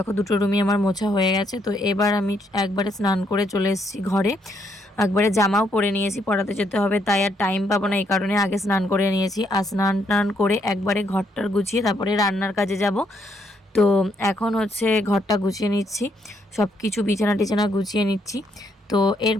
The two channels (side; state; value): both; normal; correlation 0.73